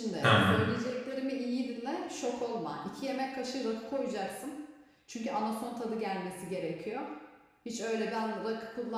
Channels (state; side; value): identical; both; correlation 1.00